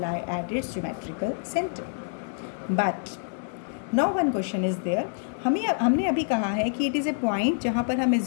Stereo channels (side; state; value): right; silent; digital silence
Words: at its geometrical center. But now one question is there. हमने अभी कहा है कि it is a point जहाँ पर हम